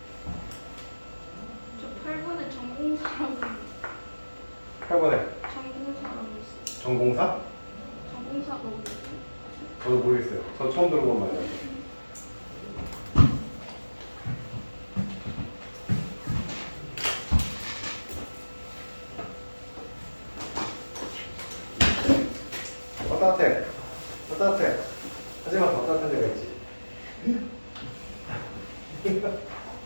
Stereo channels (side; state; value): both; inverted; correlation -1.00